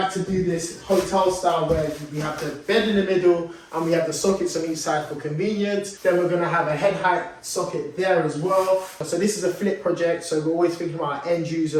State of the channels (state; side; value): identical; both; correlation 1.00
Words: to do this hotel style where we have the bed in the middle and we have the sockets on each side for convenience. Then we're going to have a head height socket there as well. So this is a flip project, so we're always thinking about our end